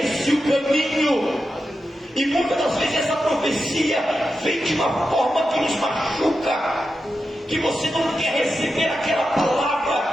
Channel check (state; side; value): normal; both; correlation 0.89